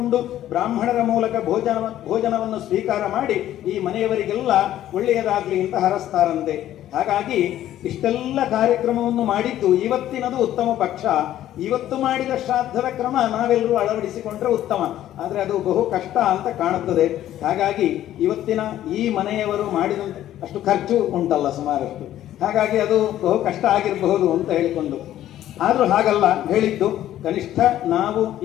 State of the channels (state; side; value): quieter; right; 12.6 dB